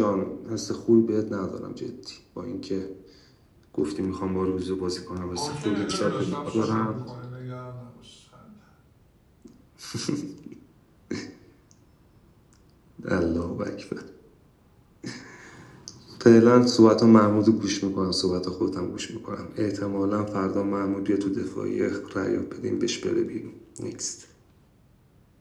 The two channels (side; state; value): both; identical; correlation 1.00